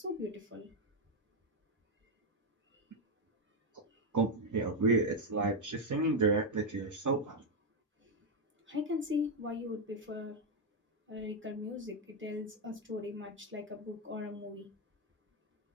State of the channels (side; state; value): both; normal; correlation 0.04